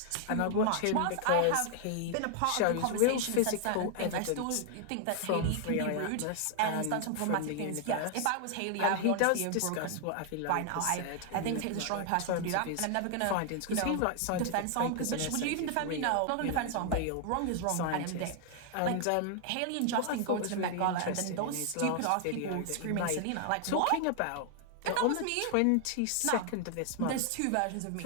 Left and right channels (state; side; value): different; both; correlation 0.00